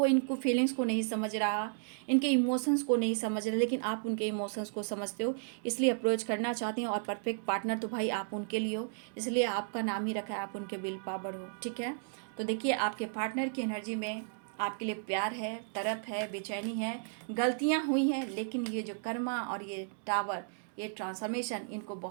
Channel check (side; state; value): left; silent; digital silence